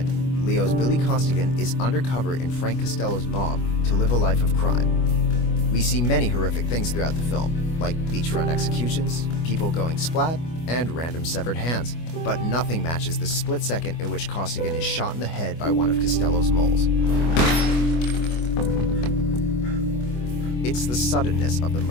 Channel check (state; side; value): late; right; 25 ms